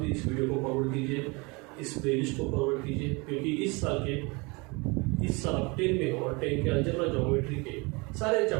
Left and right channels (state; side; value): quieter; left; 27.7 dB